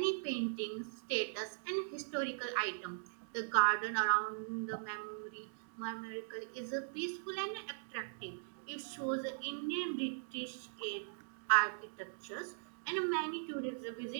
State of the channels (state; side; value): silent; left; digital silence